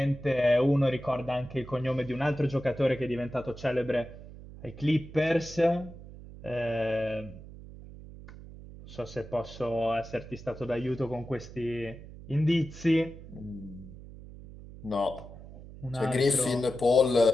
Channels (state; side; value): noise; right; hum, 16 dB below the sound